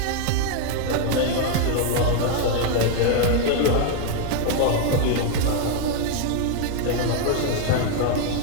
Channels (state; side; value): different; both; correlation 0.00